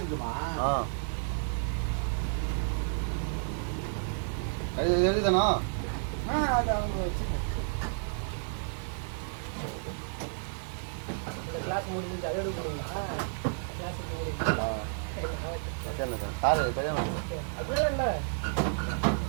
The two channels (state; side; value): silent; left; digital silence